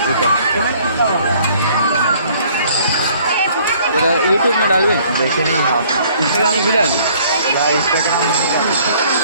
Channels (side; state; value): both; inverted; correlation -0.58